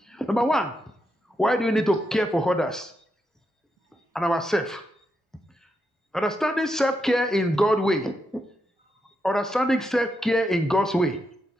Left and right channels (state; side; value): normal; both; correlation 0.83